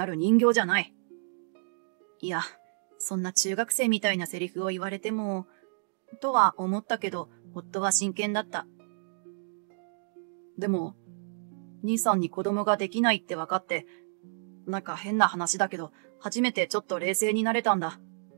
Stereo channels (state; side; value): silent; left; digital silence